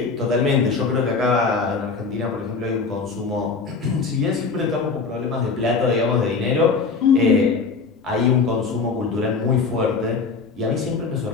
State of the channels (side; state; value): right; quieter; 4.7 dB